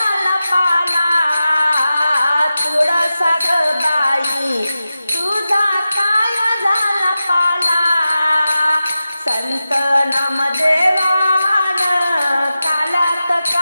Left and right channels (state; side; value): inverted; both; correlation -0.93